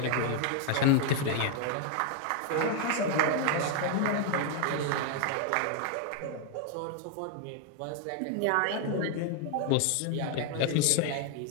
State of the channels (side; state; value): both; different; correlation 0.00